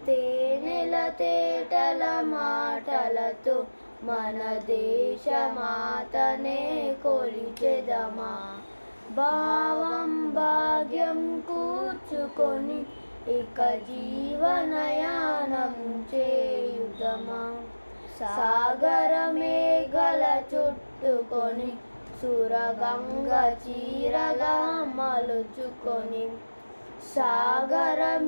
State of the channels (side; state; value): both; inverted; correlation -1.00